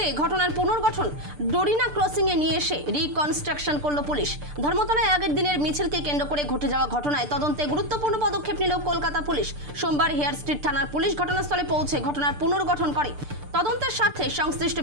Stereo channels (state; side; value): late; left; 6.8 ms